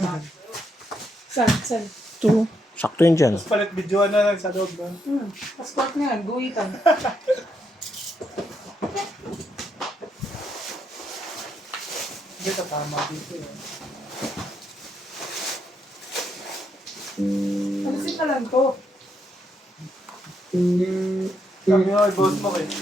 Saan? Ito. Sakto yan dyan. Tapos palit videoan na lang sa loob doon. Passport nga, guhitan. Hindi ka tama dito eh. Alisin na lang to. Sabi nga kay boss mo eh.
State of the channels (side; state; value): both; normal; correlation 0.78